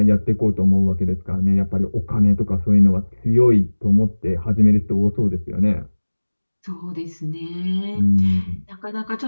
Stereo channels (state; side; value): inverted; both; correlation -1.00